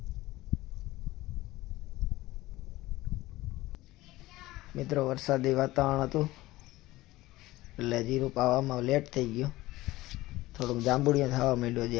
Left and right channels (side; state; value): right; quieter; 18.0 dB